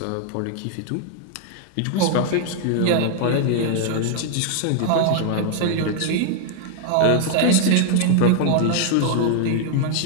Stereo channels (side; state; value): both; different; correlation 0.00